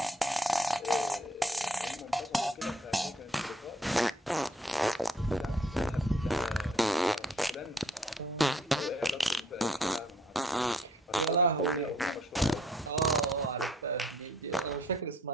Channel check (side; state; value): both; normal; correlation 0.63